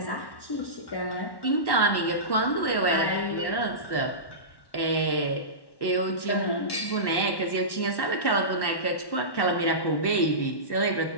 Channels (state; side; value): late; right; 1.1 ms